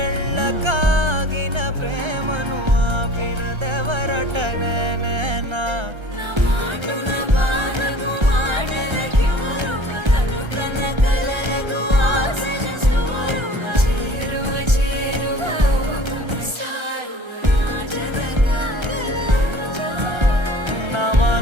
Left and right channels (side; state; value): left; late; 1.3 ms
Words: ప్రేమను ఆపినదెవరటనే నేనా